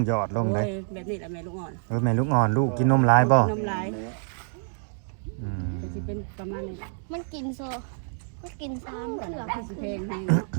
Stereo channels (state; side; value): silent; left; 60 dB below the other